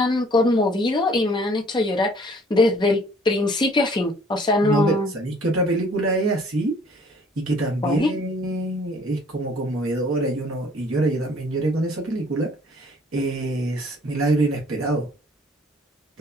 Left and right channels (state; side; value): normal; both; correlation 0.57